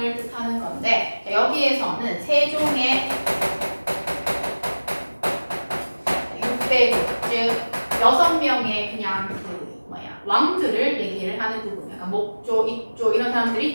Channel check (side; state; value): both; inverted; correlation -1.00